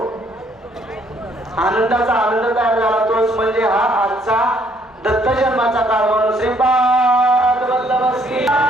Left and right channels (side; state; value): both; normal; correlation 0.66